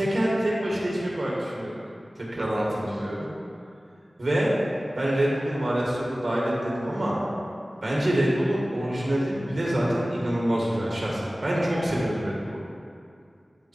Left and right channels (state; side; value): normal; both; correlation 0.97